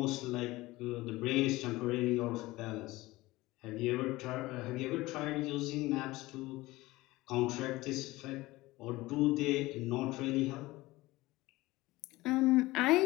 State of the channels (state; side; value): quieter; right; 19.5 dB